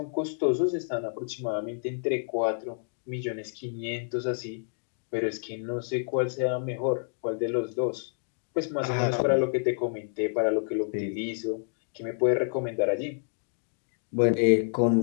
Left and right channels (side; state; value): right; silent; digital silence